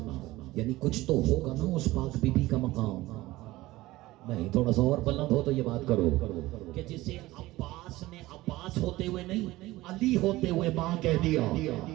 یعنی کچھ تو ہوگا نا اس پاک بی بی کا مقام. نہیں, تھوڑا سا اور بلند ہو تو یہ بات کرو کہ جسے عباس نے عباس ہوتے ہوئے نہیں, علی ہوتے ہوئے ماں کہہ دیا.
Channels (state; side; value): quieter; left; 18.2 dB